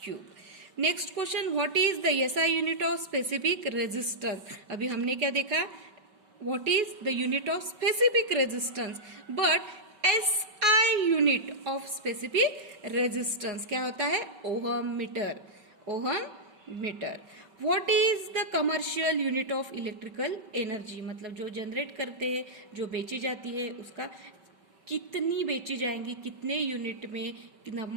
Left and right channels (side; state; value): left; late; 5.2 ms